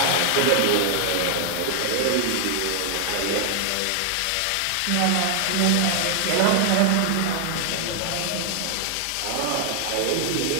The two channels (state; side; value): different; both; correlation 0.00